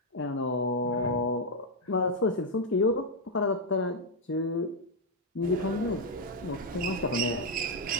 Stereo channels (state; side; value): normal; both; correlation 0.00